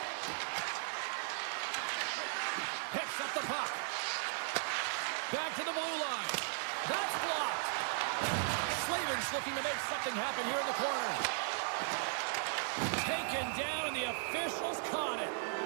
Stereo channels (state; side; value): silent; left; digital silence